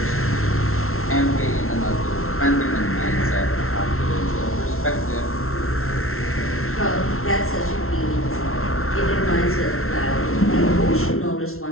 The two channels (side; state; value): right; late; 0.62 ms